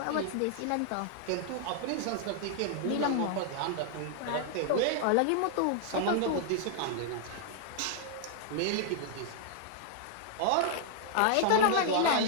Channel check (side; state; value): both; different; correlation 0.00